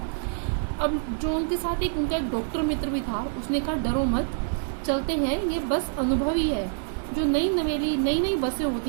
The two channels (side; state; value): left; silent; digital silence